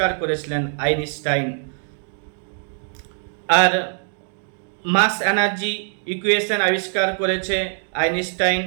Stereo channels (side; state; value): left; silent; 55 dB below the other